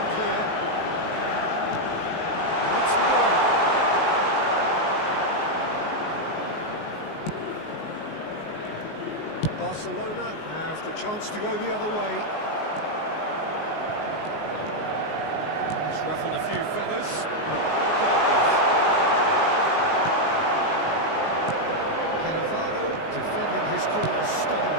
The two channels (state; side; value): late; right; 19 ms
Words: clear. What's more? Barcelona have the chance to go the other way. He's ruffled a few feathers, but well dealt with. Cannavaro, defending his corner